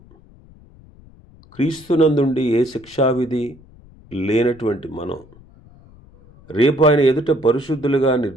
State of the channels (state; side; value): noise; left; rumble, 25 dB below the sound